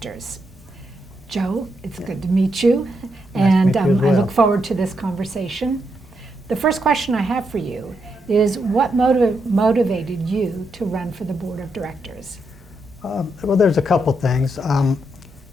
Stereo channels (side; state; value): both; normal; correlation 0.82